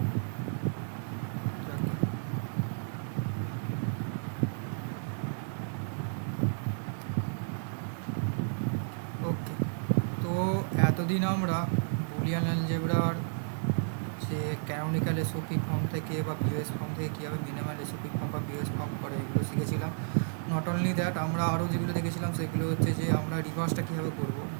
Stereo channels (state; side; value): silent; left; 56 dB below the other